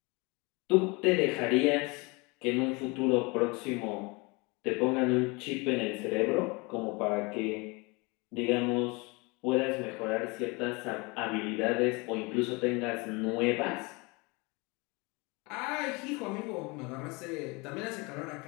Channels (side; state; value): right; quieter; 27.2 dB